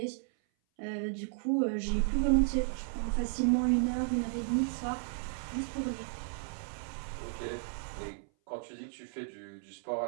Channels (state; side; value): silent; left; 55 dB below the other